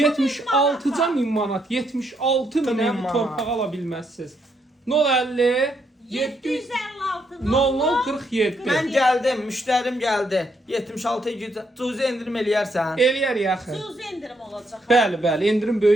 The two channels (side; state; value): both; normal; correlation 0.76